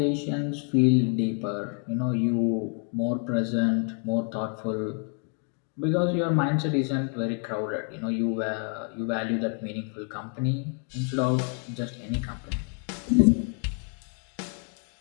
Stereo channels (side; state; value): right; quieter; 40.0 dB